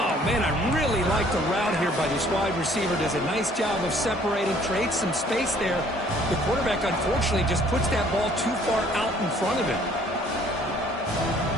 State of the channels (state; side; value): normal; both; correlation 0.58